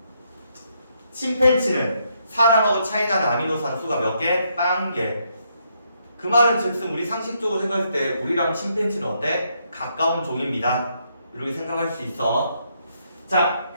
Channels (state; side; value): inverted; both; correlation -0.75